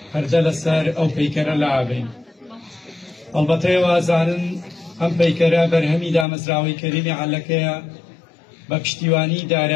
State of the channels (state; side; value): drops out; right; at 6.2 s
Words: هەردە لەسەر ئەو پەیکەرە لاابین ئەڵبەتە وازانن ئەم پەیکەرە بەرهەمی دامەزراوەی کەریمی عەلەکەیە بە پشتیوانی